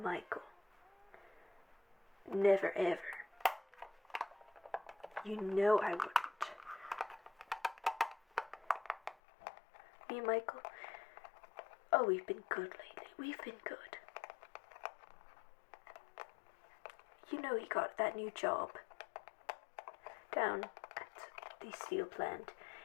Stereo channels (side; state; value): right; drops out; at 9.2 s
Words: Never, ever. You know I wouldn't. Me and Michael, oh, we've been good lately. We've been good. You know he got that new job down at the steel plant.